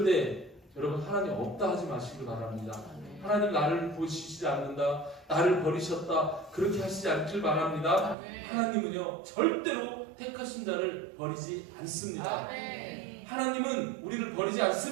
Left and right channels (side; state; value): left; drops out; at 8.2 s